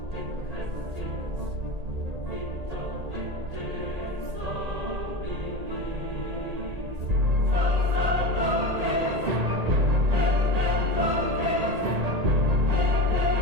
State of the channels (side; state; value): left; late; 1.8 ms